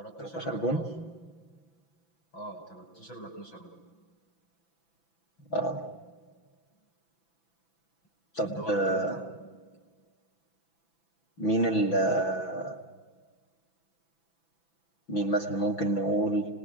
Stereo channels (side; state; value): right; late; 6.0 ms